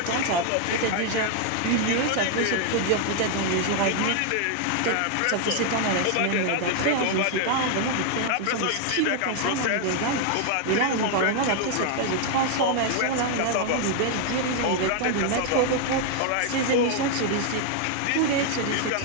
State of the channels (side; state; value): both; different; correlation 0.00